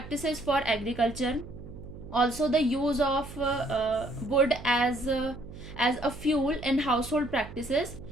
for agriculture, also the use of wood as a fuel in household practices,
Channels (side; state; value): right; noise; hum, 14 dB below the sound